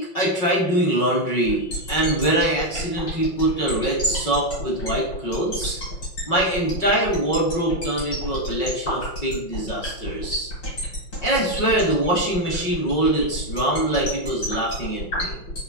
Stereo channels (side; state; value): right; late; 5.5 ms